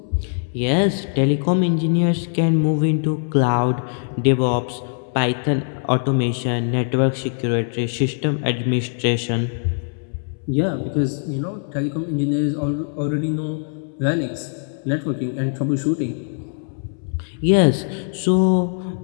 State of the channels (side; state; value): right; silent; 65 dB below the other